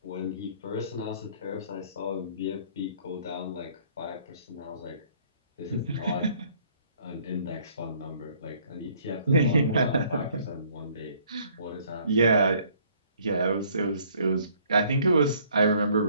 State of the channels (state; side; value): inverted; both; correlation -0.61